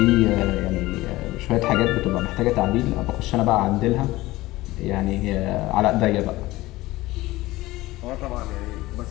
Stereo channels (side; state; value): right; quieter; 18.5 dB